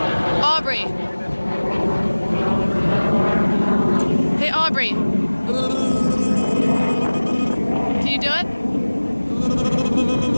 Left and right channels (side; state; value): both; inverted; correlation -1.00